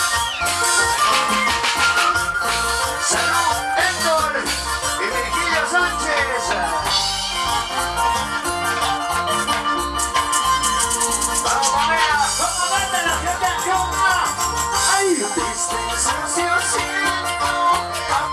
Salud, Héctor y Virgilio Sánchez. Vamos, familia. ¿Cómo manda la gente en Chunga? Ay, tristezas yo siento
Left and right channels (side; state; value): both; identical; correlation 1.00